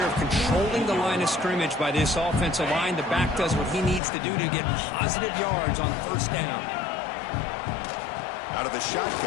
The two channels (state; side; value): drops out; right; at 4.0 s